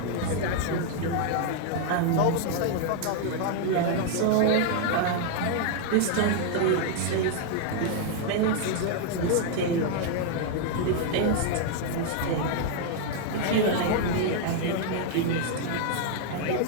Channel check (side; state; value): both; different; correlation 0.00